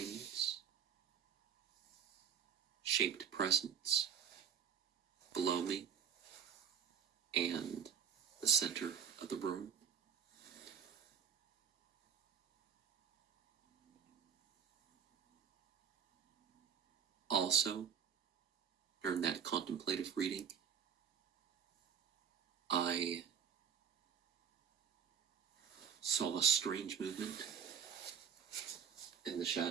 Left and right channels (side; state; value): left; quieter; 7.8 dB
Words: shaped presence below me and the center of the room. Also, during that contemplative reading, I saw a strange movement in the